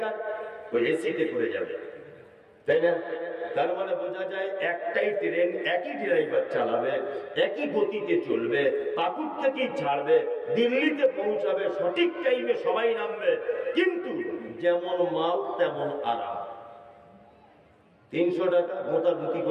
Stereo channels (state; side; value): identical; both; correlation 1.00